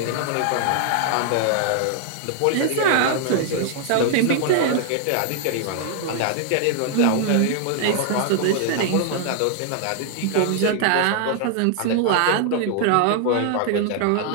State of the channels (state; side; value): different; both; correlation 0.00